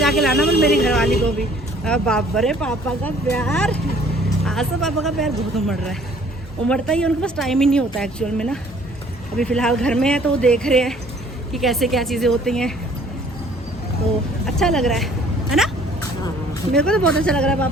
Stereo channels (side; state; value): both; normal; correlation 0.57